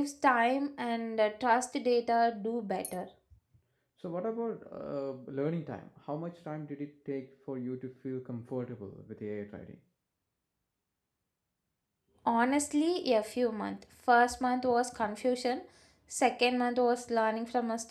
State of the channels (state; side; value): identical; both; correlation 1.00